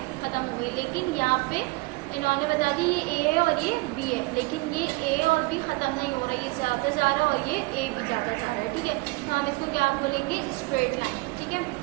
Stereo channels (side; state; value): left; quieter; 24.4 dB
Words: ख़त्म हो गई। लेकिन यहाँ पे इन्होंने बता दी ये ए है और ये बी है, लेकिन ये ए और बी ख़त्म नहीं हो रहा है, ये जाता जा रहा है और ये ए भी जाता जा रहा है, ठीक है। तो हम इसको क्या बोलेंगे, स्ट्रेट लाइन, ठीक है।